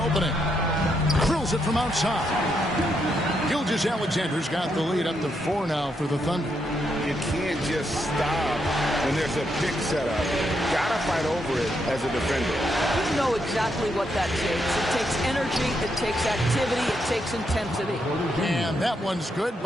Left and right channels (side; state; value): both; normal; correlation 0.79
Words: Drills it from outside. Gilgeous-Alexander's got the lead up to 4 now for the Thunder. You can't just stop when there's a pick set up. Gotta fight over it as a defender. You know exactly what that takes. It takes energy, it takes activity, it takes intensity. And that one's good